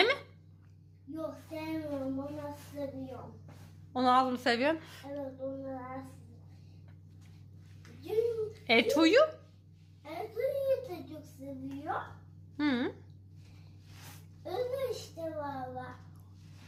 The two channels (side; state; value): both; identical; correlation 1.00